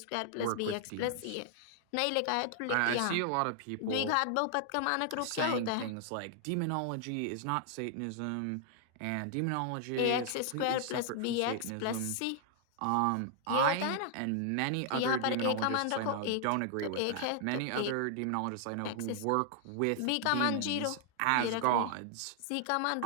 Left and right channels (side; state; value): both; different; correlation 0.00